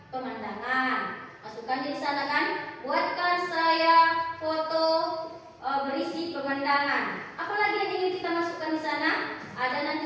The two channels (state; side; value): identical; both; correlation 1.00